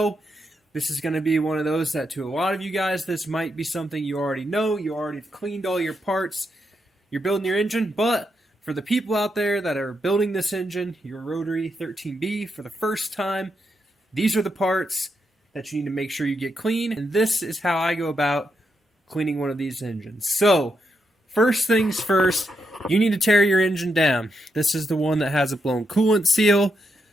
This is going to be one of those that to a lot of you guys, this might be something you already know. You already cleaned all your parts. You're building your engine, but for the people out there that are building this engine, your Rotary 13B for the first time, these are the parts that you need to make sure you get clean. And this is how I go about cleaning one of these engines. So, first things first, you need to tear your engine down. This is the one that has a blown coolant seal.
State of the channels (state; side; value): normal; both; correlation 0.82